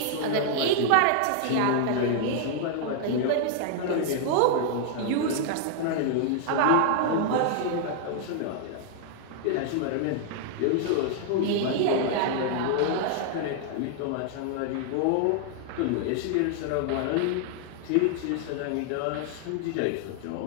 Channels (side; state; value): both; different; correlation -0.01